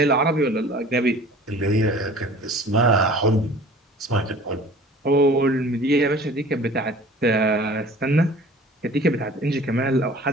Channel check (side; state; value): both; normal; correlation 0.46